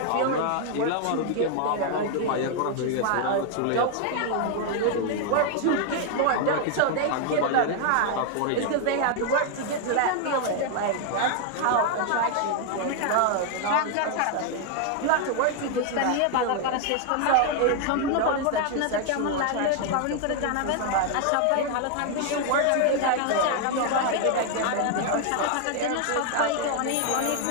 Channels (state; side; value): different; both; correlation 0.00